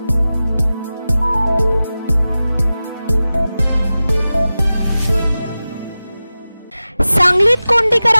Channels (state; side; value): inverted; both; correlation -0.95